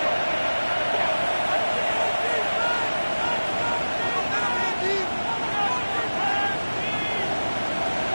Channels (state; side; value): inverted; both; correlation -1.00